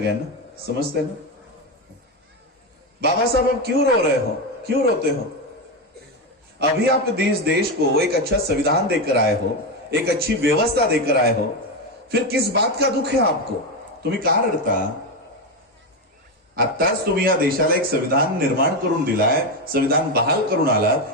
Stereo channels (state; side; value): normal; both; correlation 0.12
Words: समजते ना. बाबा साहब आप क्यों रो रहे हो, क्यों रोते हो. अभी आप देश को एक अच्छा संविधान देकर आए हो, एक अच्छी व्यवस्था देकर आए हो, फिर किस बात का दुख है आपको, तुम्ही का रडता. आत्ताच तुम्ही या देशाला एक संविधान निर्माण करून दिलाय, संविधान बहाल करून